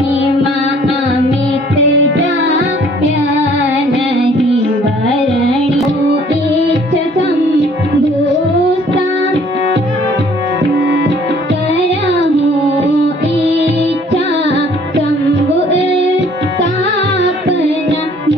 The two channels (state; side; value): normal; both; correlation 0.57